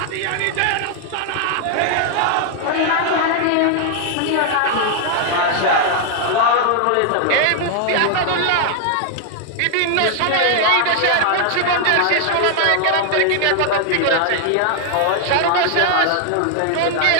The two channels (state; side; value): different; both; correlation 0.00